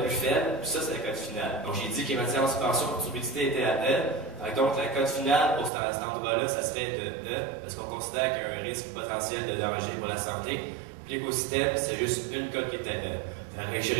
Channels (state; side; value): drops out; left; at 5.7 s